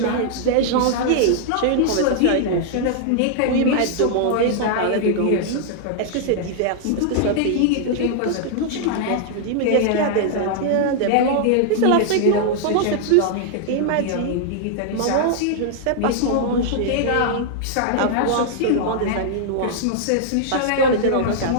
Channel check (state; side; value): different; both; correlation -0.01